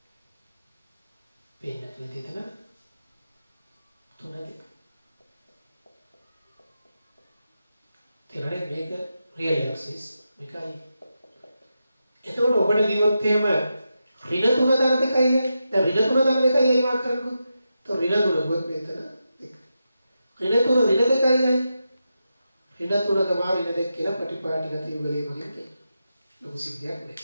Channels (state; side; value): inverted; both; correlation -0.88